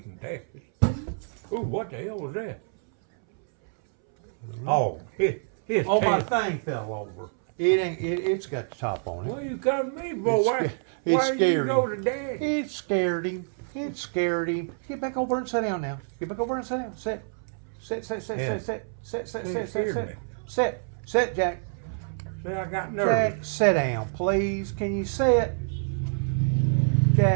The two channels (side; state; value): left; silent; 60 dB below the other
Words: from Texas. Ooh, what the hell was that? Oh, his Oh, my Texas. thing fell over. It ain't. It's got the top on it. Well, you come to me, boy. It Why scared did you go him. to Daddy? It scared him. It scared him. Get back over and sit down now. Get back over and sit down. Sit. Sit, Yeah. Jack. See, I got Jack, nervous. sit down, please. Can you sit?